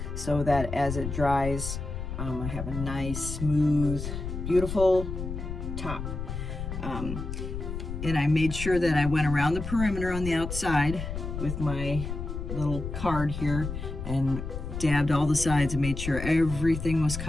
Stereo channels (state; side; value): noise; left; rumble, 6 dB below the sound